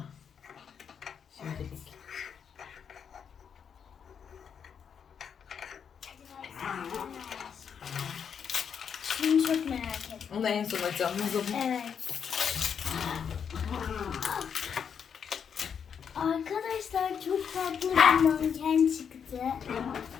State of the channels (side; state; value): right; quieter; 7.3 dB